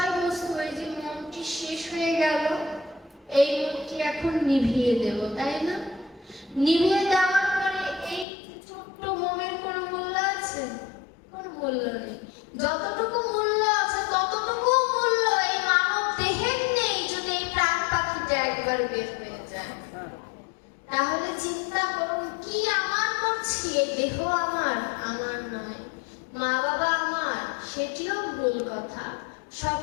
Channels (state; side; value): drops out; right; at 8.2 s